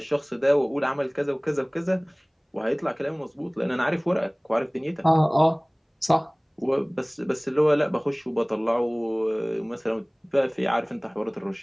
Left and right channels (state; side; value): identical; both; correlation 1.00